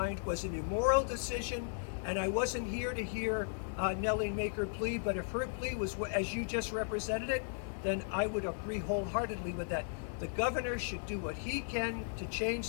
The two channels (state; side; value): silent; right; digital silence